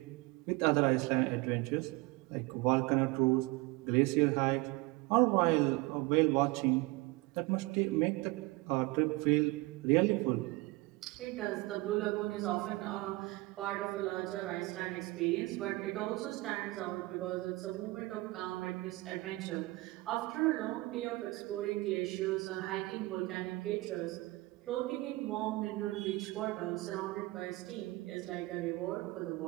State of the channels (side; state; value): left; quieter; 22.1 dB